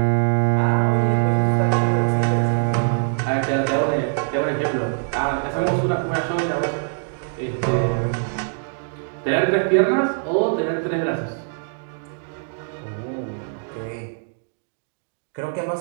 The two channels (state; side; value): silent; left; digital silence